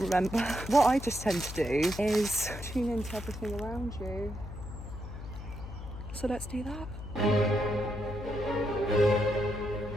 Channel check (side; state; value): left; noise; hum, 10 dB below the sound